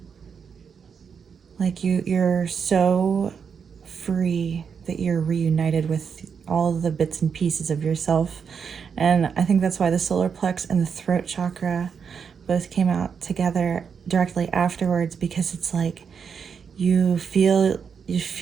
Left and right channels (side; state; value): left; quieter; 6.5 dB